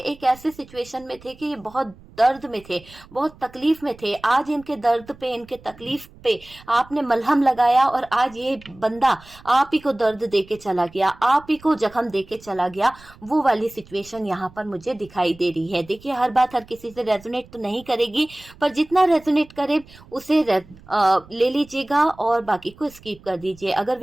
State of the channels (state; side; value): noise; right; rumble, 23 dB below the sound